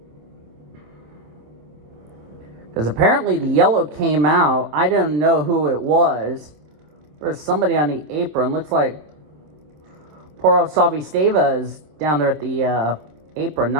Because apparently the yellow came out. I don't know who it was. There's somebody on the apron. Looks like Poro Savisteva is down there at the apron.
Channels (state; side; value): late; left; 26 ms